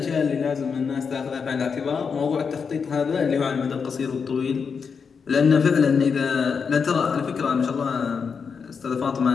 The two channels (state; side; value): quieter; right; 5.9 dB